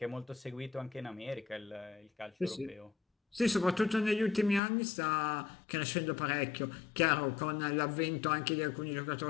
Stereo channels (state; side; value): drops out; right; at 4.6 s